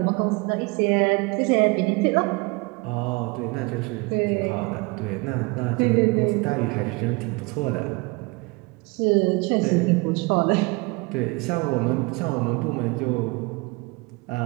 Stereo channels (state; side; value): quieter; left; 27.0 dB